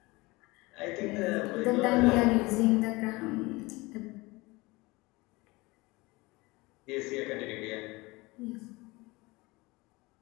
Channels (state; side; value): quieter; right; 23.0 dB